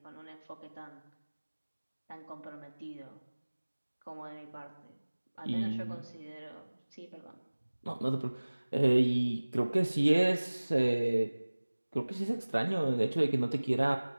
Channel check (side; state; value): both; inverted; correlation -1.00